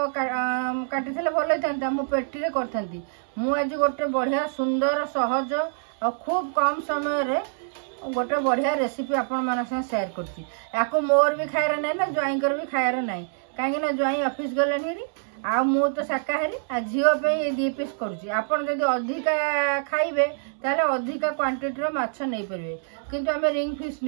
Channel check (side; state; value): left; silent; 61 dB below the other